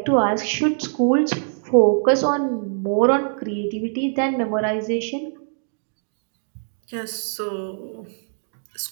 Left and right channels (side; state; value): left; silent; digital silence